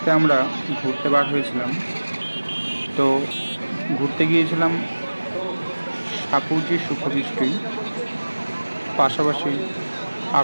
আমরা ঘুরতে বার হয়েছিলাম। তো ঘুরতে গিয়েছিলাম সাপুজি সুখদৃষ্টি, পাশাপাশি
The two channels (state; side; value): inverted; both; correlation -1.00